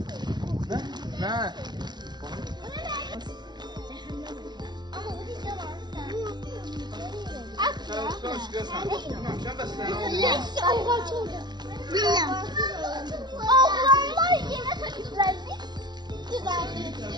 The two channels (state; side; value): late; left; 0.20 ms